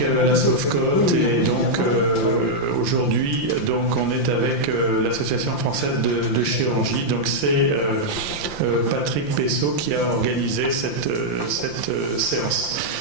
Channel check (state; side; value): late; right; 5.8 ms